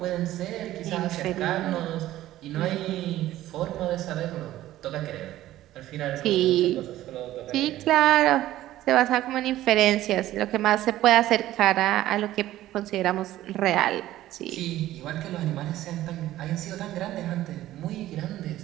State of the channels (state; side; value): quieter; left; 14.5 dB